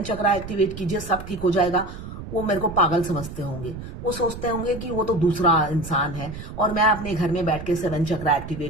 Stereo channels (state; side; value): noise; right; rumble, 11 dB below the sound